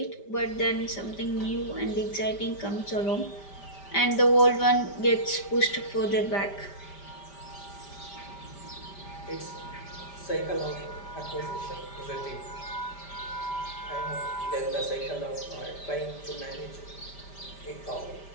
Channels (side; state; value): right; late; 5.1 ms